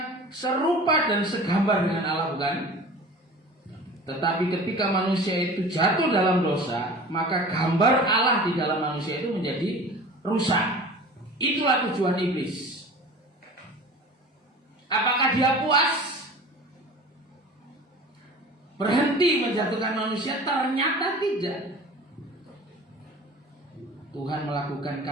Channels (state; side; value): normal; both; correlation 0.40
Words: serupa dan segambar dengan Allah, bukan? Tetapi ketika manusia itu jatuh dalam dosa, maka gambar Allah di dalam manusia itu menjadi rusak. Itulah tujuan iblis. Apakah dia puas? Berhenti menjatuhkan manusia? Ternyata tidak. Tuhan melakukan